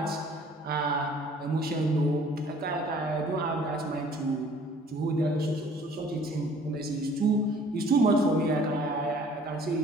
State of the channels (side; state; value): both; normal; correlation 0.54